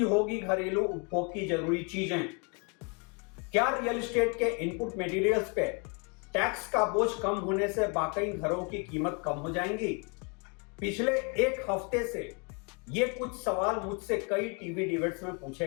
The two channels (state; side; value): quieter; right; 34.8 dB